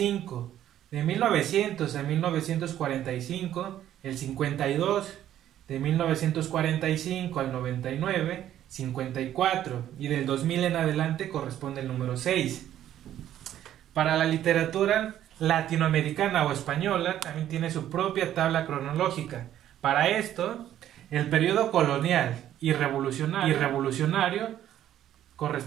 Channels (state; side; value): quieter; left; 11.7 dB